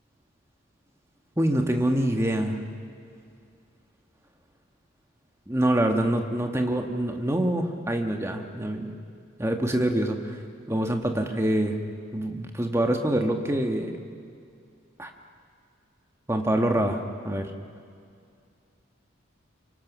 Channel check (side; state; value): both; normal; correlation 0.84